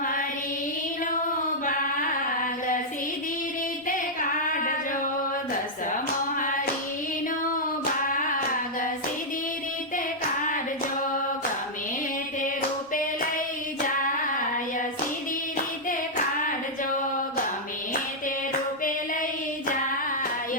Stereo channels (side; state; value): both; normal; correlation -0.06